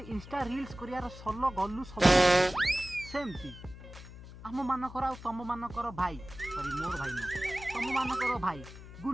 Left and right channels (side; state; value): left; noise; hum, 15 dB below the sound